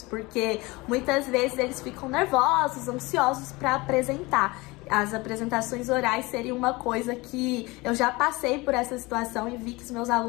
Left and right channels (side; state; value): right; quieter; 23.0 dB